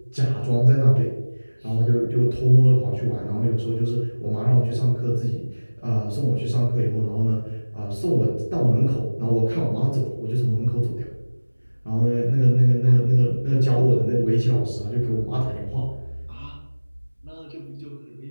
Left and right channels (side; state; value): both; inverted; correlation -1.00